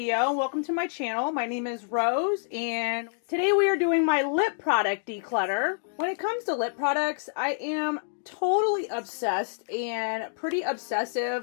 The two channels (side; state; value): right; silent; digital silence